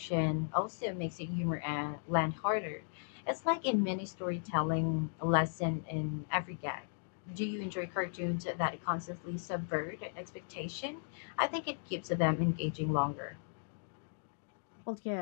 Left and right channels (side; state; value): right; silent; digital silence